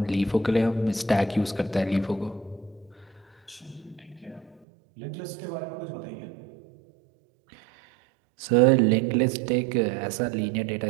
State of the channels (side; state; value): left; drops out; at 4.7 s